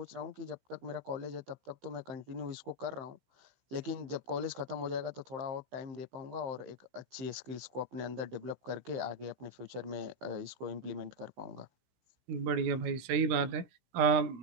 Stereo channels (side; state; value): left; late; 15 ms